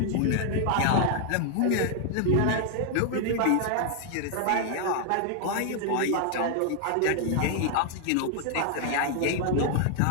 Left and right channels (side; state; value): both; different; correlation 0.00